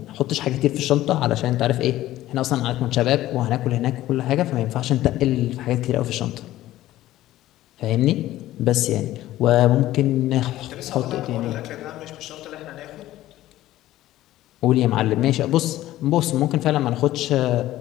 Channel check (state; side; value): quieter; right; 14.8 dB